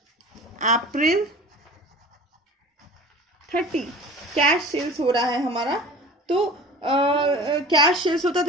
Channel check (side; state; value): both; normal; correlation 0.39